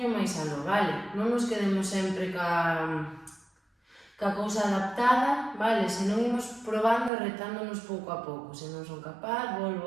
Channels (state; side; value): drops out; left; at 7.1 s